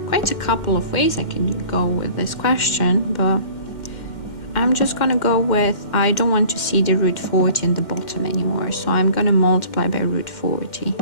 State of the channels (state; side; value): late; right; 2.1 ms